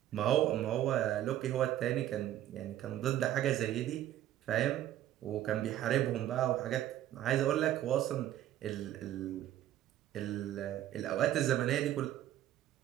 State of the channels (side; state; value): left; quieter; 12.6 dB